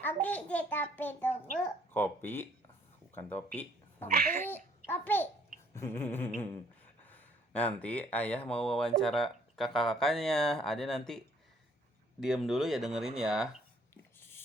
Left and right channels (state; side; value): normal; both; correlation 0.62